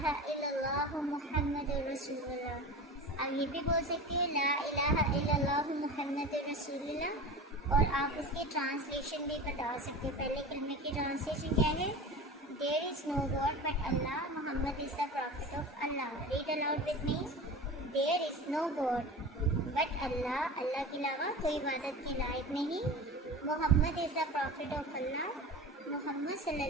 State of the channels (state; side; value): normal; both; correlation 0.32